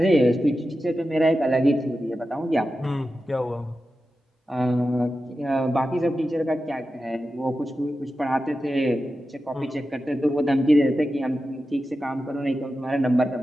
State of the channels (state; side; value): normal; both; correlation 0.92